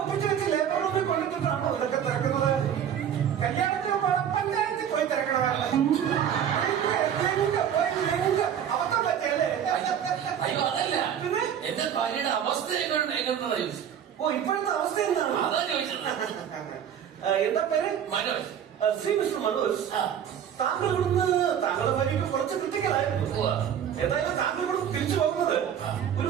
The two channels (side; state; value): left; quieter; 9.0 dB